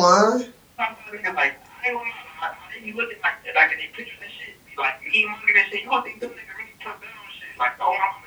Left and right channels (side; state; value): both; identical; correlation 1.00